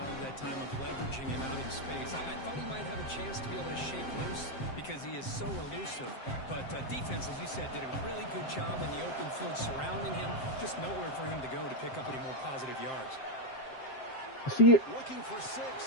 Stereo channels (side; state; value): right; late; 7.6 ms